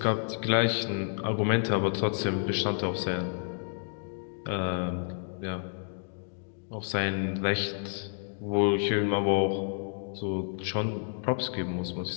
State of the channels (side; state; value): right; silent; digital silence